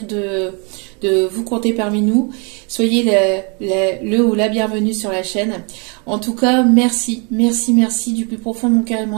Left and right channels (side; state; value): left; quieter; 34.4 dB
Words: de vous compter parmi nous. Soyez le ou la bienvenue sur la chaîne. En tout cas, merci, merci, merci du plus profond de mon cœur et de